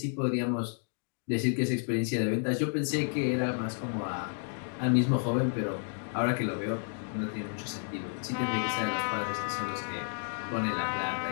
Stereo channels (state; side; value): silent; right; 57 dB below the other